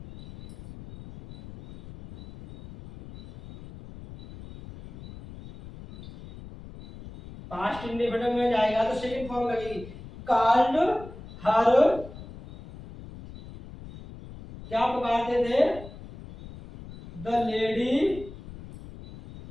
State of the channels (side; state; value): left; noise; rumble, 16 dB below the sound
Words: पास्ट इंडेफिनिट में जाएगा तो सेकंड फॉर्म लगेगी, कॉल्ड हर। क्या पुकारते थे? The lady